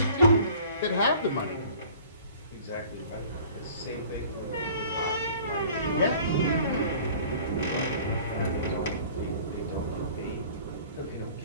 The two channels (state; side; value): inverted; both; correlation -0.49